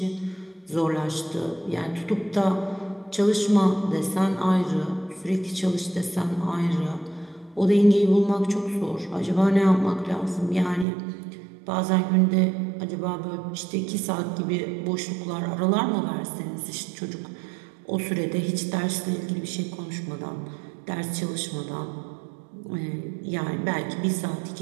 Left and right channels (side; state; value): left; drops out; at 10.9 s